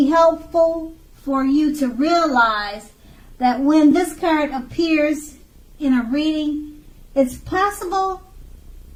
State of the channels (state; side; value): identical; both; correlation 1.00